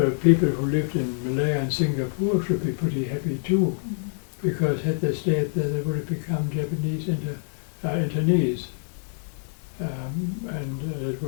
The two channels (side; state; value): right; silent; digital silence